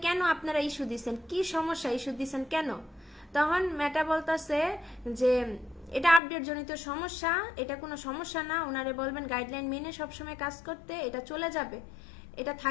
কেন আপনারা ইস্যু দিচ্ছেন, কি সমস্যা ইস্যু দিচ্ছেন কেন। তখন ম্যাটা বলতেছে যে এটা আপডেট জনিত সমস্যা, এটা কোনো সমস্যা না, ওনারে বলবেন গাইডলাইন মেনে সবসময় কাজ করতে, এটা চলে যাবে, এটা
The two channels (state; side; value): drops out; right; at 6.2 s